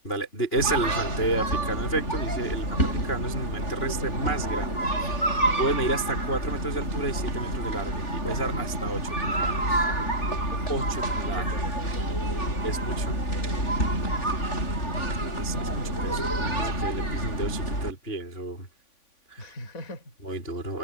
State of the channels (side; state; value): right; late; 3.5 ms